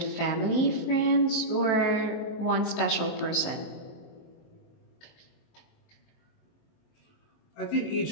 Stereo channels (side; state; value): right; late; 23 ms